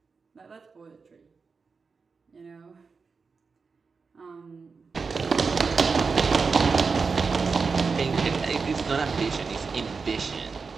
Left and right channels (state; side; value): quieter; left; 4.9 dB